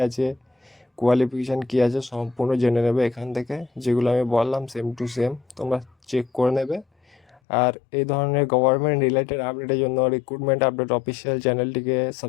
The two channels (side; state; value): right; drops out; at 7.4 s